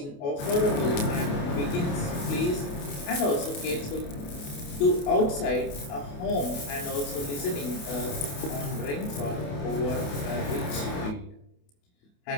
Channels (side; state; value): right; late; 28 ms